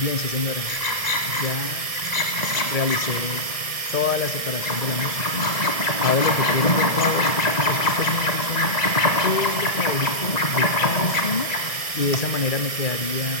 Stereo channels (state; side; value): late; right; 1.6 ms